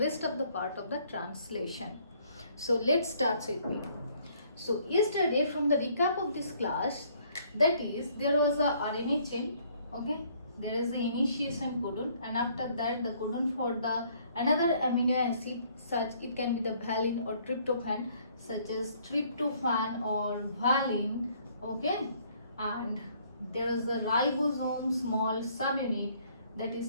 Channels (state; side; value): inverted; both; correlation -0.63